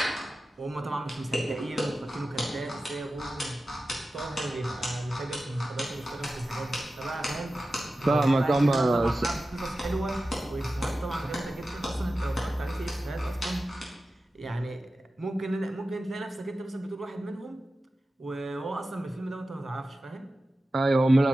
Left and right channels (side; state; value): both; normal; correlation 0.94